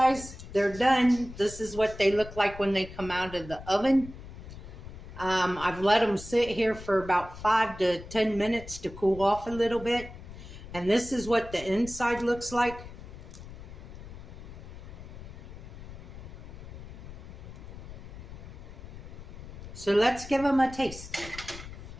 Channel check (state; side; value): noise; left; rumble, 13 dB below the sound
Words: they're done. This is what they look like when they come out of the oven. I've let them sit here for about 5 to 10 minutes to cool off a little bit. And this is what the inside looks like. So let's give them a taste.